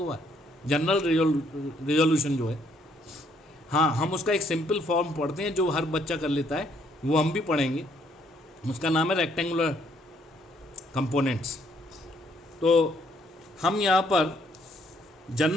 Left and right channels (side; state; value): both; normal; correlation 0.68